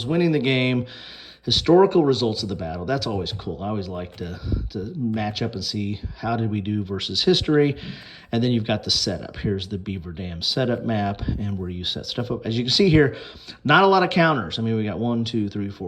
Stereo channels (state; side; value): identical; both; correlation 1.00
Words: winning the game, historical results of the battle. That's always cool. I always like to match up and see how did we do versus history. And then you've got the setup. Here's the Beaver Dam setup map and where you set stuff up. As you can see here, not a lot of counters. I mean, we got 1, 2, 3,